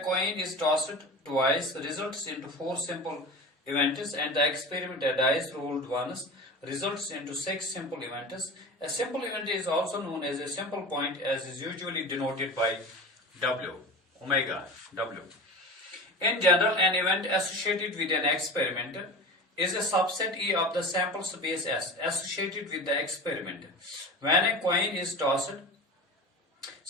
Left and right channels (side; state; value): both; normal; correlation 0.31